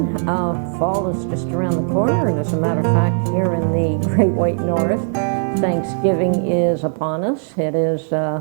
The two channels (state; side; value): silent; left; 67 dB below the other